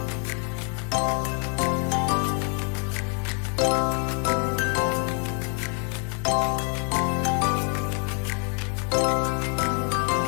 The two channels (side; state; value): right; quieter; 39.8 dB